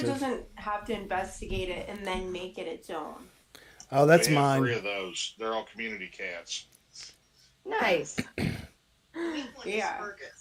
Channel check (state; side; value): identical; both; correlation 1.00